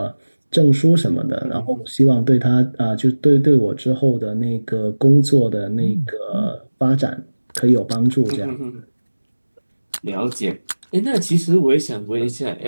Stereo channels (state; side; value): inverted; both; correlation -1.00